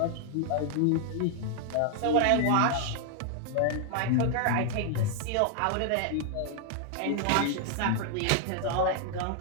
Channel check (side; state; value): both; different; correlation 0.00